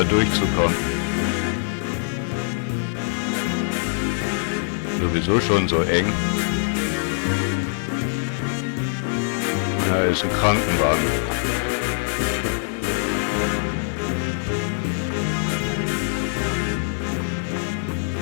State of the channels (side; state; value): right; silent; 63 dB below the other